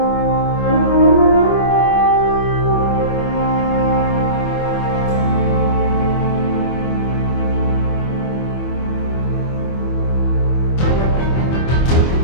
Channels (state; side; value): late; right; 24 ms